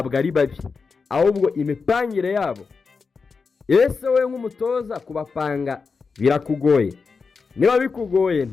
ari babi, ahubwo imipangire yabo. Ese we nk'umutoza kubapanga birakugoye? Niba bikugoye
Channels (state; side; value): quieter; right; 4.9 dB